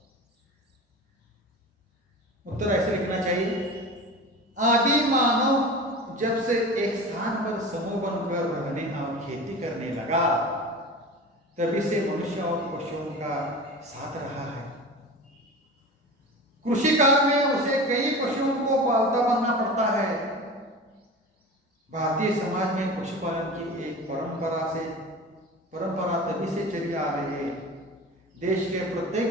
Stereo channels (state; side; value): normal; both; correlation 0.33